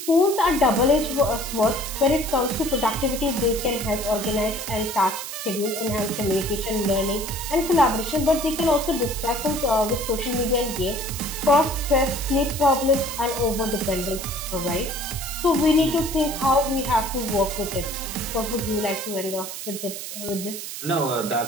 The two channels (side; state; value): right; noise; hiss, 8 dB below the sound